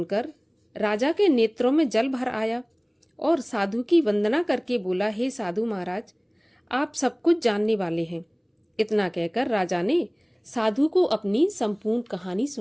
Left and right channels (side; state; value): both; identical; correlation 1.00